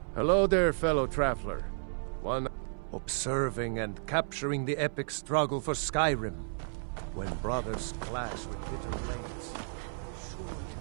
Hello there, fellow traveler. One observing and capturing the epic struggle for Skyrim, when brothers clash with bitter blades. Surely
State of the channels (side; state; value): left; silent; 56 dB below the other